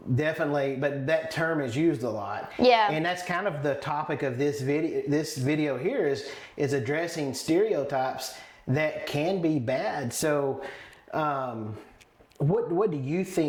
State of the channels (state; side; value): identical; both; correlation 1.00